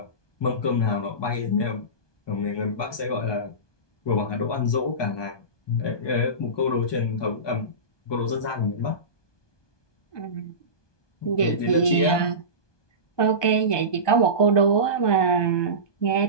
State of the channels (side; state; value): right; late; 1.2 ms